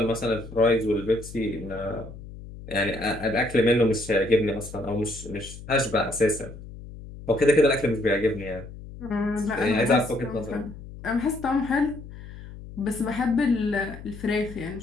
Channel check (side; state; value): left; noise; hum, 14 dB below the sound